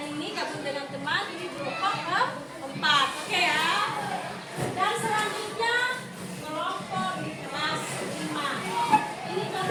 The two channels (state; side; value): identical; both; correlation 1.00